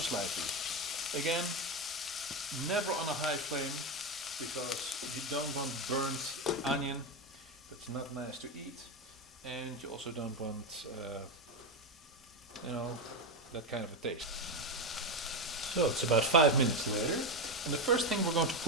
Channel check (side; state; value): both; normal; correlation 0.12